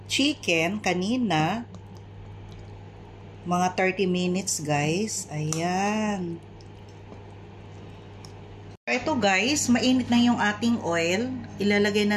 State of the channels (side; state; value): both; identical; correlation 1.00